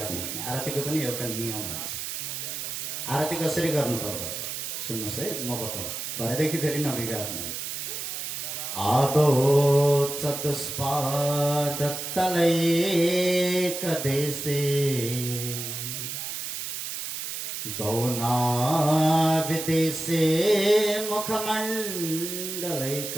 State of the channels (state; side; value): noise; right; hiss, 5 dB below the sound